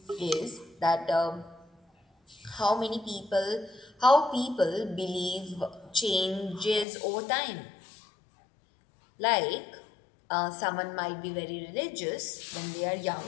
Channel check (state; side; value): drops out; right; at 6.9 s